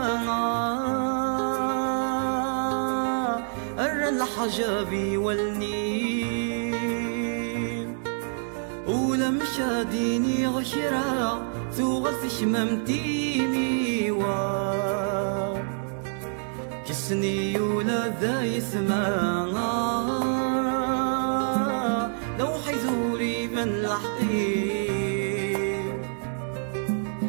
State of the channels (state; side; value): silent; left; digital silence